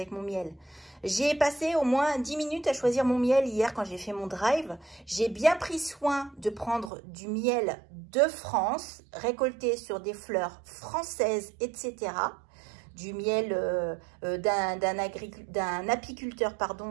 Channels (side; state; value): left; drops out; at 6.9 s